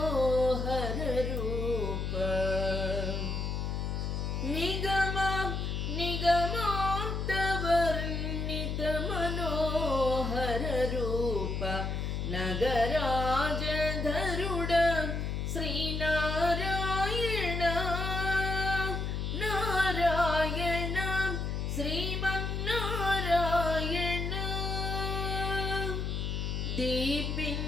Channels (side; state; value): left; noise; hum, 2 dB below the sound